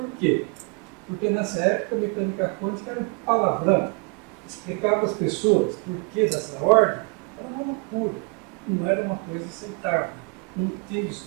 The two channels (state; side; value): quieter; left; 32.6 dB